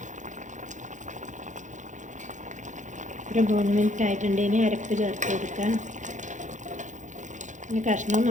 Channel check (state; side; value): late; left; 0.36 ms